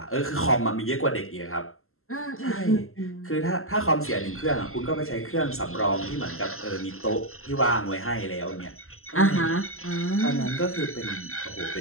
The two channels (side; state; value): right; late; 0.62 ms